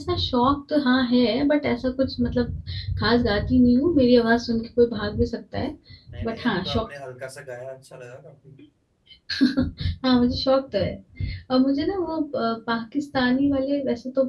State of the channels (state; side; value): identical; both; correlation 1.00